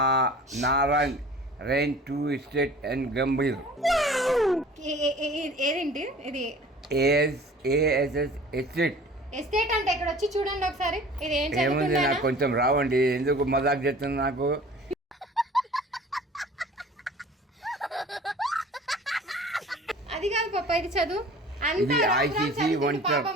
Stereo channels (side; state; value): both; normal; correlation 0.45